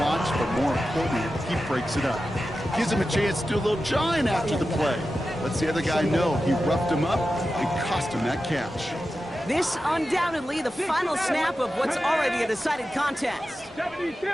but more importantly, he breaks it up. Gives him a chance to do a little jawing after the play. Lets the other guy know he roughed him up and cost him that catch. This undoubtedly the final snap of what's already a decided contest. 70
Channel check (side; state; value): both; normal; correlation 0.92